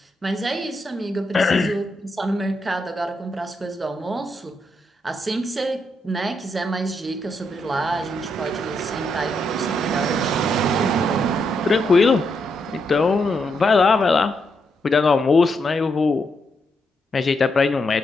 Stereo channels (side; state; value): both; normal; correlation 0.80